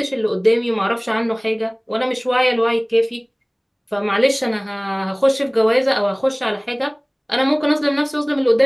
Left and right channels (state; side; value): identical; both; correlation 1.00